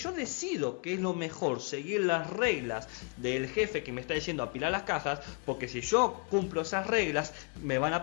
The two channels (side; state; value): right; quieter; 34.8 dB